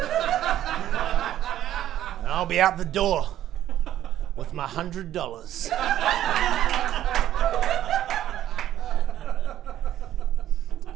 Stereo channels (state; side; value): quieter; left; 12.2 dB